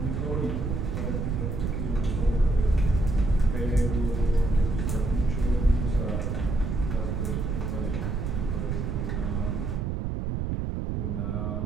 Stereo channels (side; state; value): right; noise; rumble, 1 dB below the sound